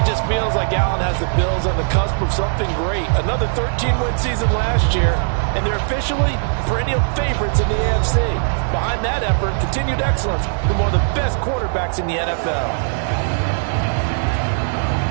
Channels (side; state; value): left; silent; digital silence